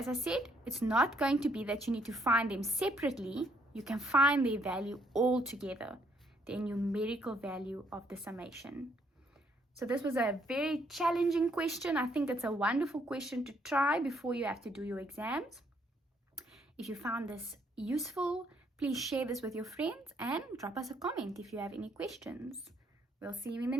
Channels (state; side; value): normal; both; correlation 0.69